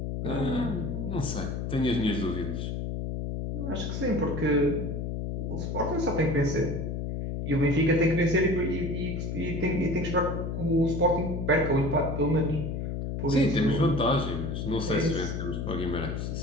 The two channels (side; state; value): left; noise; hum, 3 dB below the sound